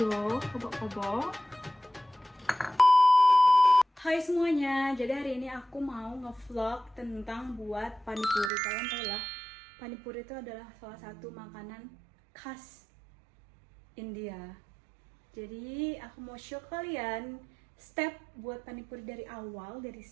kobok-kobok. Hai semuanya, jadi hari ini aku mau ngevlog tentang buat panipuri. Kalian tahu lah, panipuri itu adalah salah satu makanan khas India. Jadi aku mau show kalian step buat panipuri dari awal, dari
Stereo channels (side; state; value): left; drops out; at 8.5 s